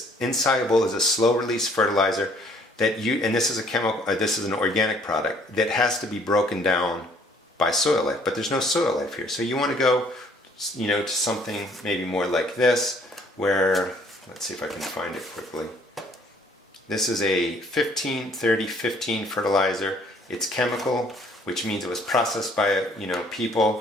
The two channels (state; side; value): normal; both; correlation 0.60